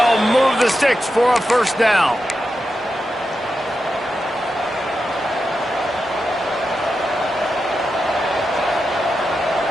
move the sticks for a first down.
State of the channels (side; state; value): both; normal; correlation 0.89